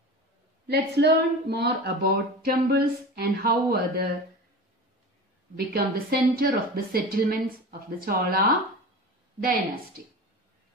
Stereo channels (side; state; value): both; normal; correlation 0.31